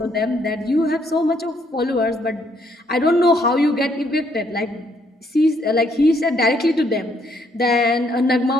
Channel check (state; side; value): normal; both; correlation 0.70